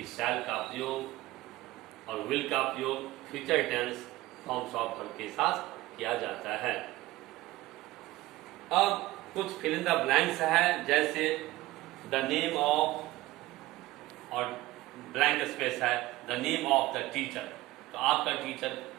shall का प्रयोग और will का प्रयोग future tense forms of verb के साथ किया जाता है। अब कुछ फिल इन द ब्लैंक्स है, जैसे द नेम ऑफ और ब्लैंक स्पेस है the name of the teacher. तो आपका टीचर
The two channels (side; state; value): left; quieter; 18.0 dB